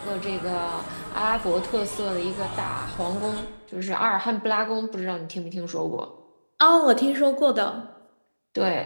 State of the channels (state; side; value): inverted; both; correlation -1.00